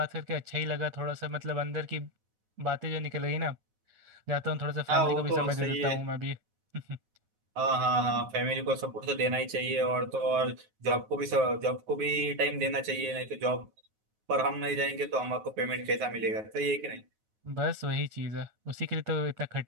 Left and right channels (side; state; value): left; late; 9.4 ms